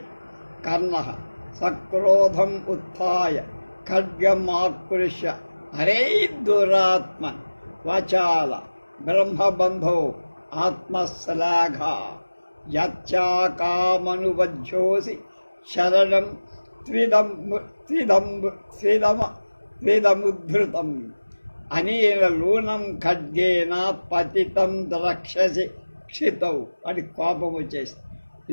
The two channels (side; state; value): both; inverted; correlation -1.00